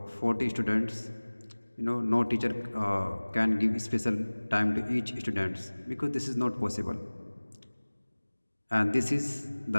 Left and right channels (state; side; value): inverted; both; correlation -1.00